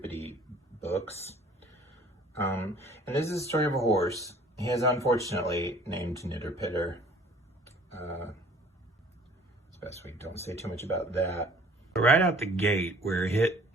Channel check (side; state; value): both; normal; correlation 0.53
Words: books. And this is a story of a horse. He is unfortunately named Nitter Pitter. It's best we don't say too much about that. Right out the gate, we're hit